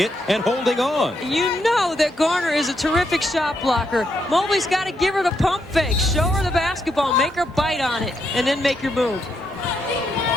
it and holding on. You know that Garner is a terrific shot blocker. Mobley's got to give her the pump fake, show her the basketball, make her bite on it, and then make your move.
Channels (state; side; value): normal; both; correlation 0.79